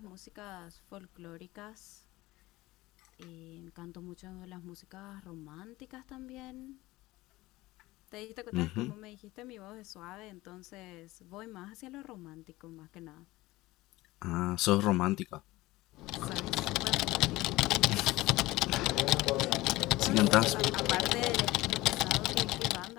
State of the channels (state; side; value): quieter; right; 19.0 dB